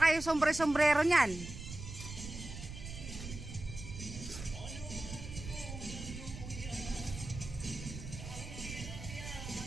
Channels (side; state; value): right; noise; rumble, 10 dB below the sound